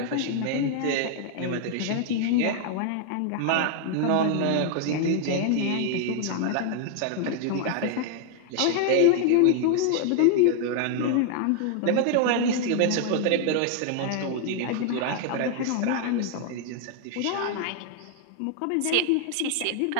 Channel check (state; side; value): different; both; correlation 0.00